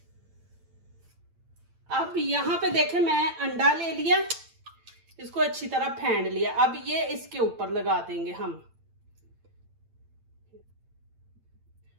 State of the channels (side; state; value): left; late; 8.9 ms